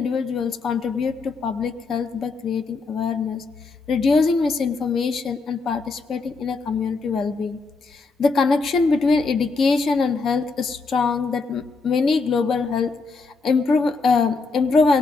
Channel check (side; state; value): right; quieter; 4.2 dB